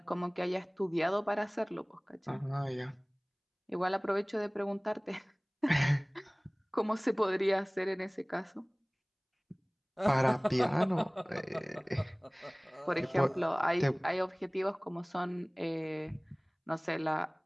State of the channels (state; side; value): identical; both; correlation 1.00